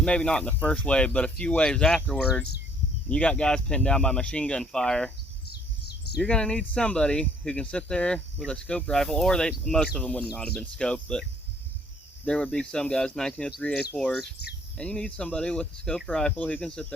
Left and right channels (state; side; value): normal; both; correlation 0.61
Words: not in the first wave, but a few waves afterwards, you got guys pinned down by machine gun fire. You're going to need somebody who can sit there with a scoped rifle, or most of them would not have been scoped, but there would be some guys, 1903 A4s, and you need somebody with a scoped rifle who can sit